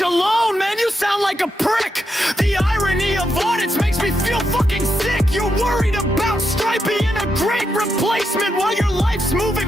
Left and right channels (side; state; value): both; normal; correlation 0.83